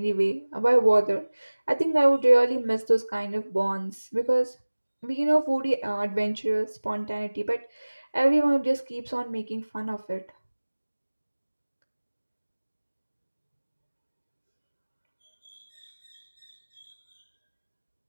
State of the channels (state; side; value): inverted; both; correlation -1.00